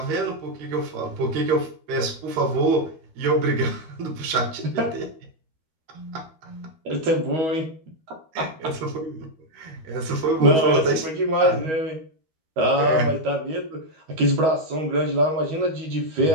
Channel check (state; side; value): late; left; 12 ms